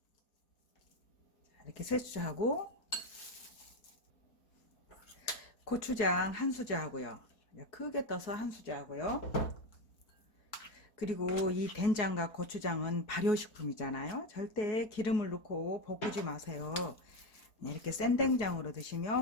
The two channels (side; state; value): right; late; 4.7 ms